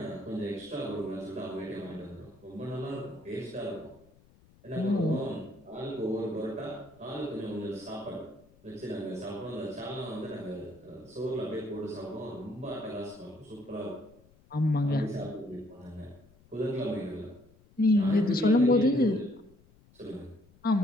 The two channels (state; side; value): noise; left; rumble, 28 dB below the sound